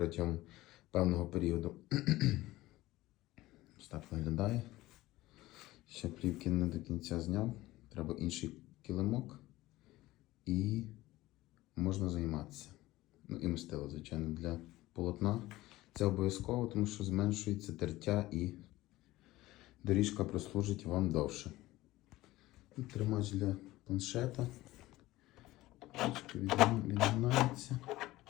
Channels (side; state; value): right; quieter; 17.6 dB